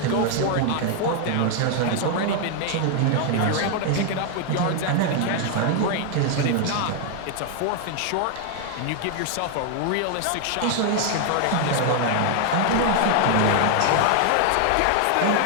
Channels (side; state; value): both; different; correlation 0.00